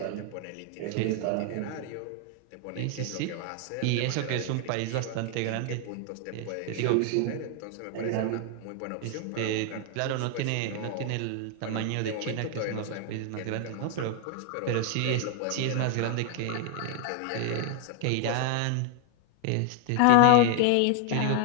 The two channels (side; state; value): both; different; correlation 0.00